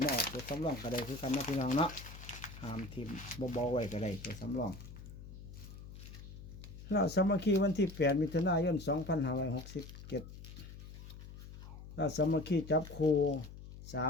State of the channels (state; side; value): noise; left; hum, 14 dB below the sound